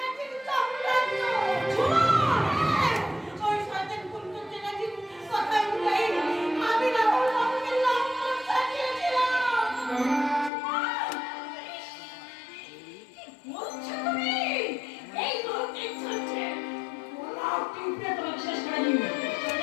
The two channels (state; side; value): drops out; right; at 10.5 s